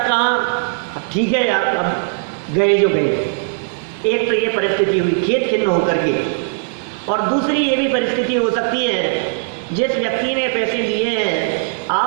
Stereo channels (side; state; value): left; silent; 67 dB below the other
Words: अब ठीक है यार, अब गए जो गए। एक तो ये परिस्थिति हुई खेत खिन्न होकर के, और दूसरी ये भी परिस्थिति हो सकती है, जिस व्यक्ति ने पैसे लिए हैं